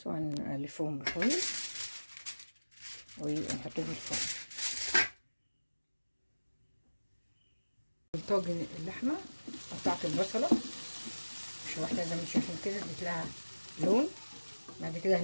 وهنلفهم بفويل ونحطهم في الفرن. طاجن اللحمه قطعت البصله مش واحده زي ما انتم شايفين كده، اديت لها لون. بعد كده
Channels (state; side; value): inverted; both; correlation -1.00